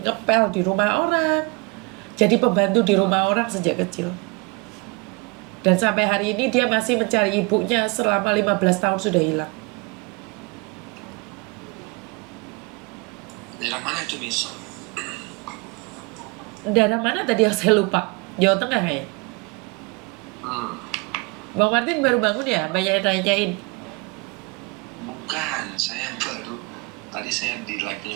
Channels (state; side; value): quieter; left; 28.7 dB